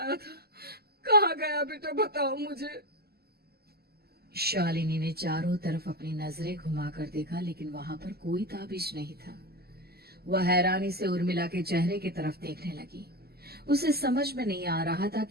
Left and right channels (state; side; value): late; left; 0.46 ms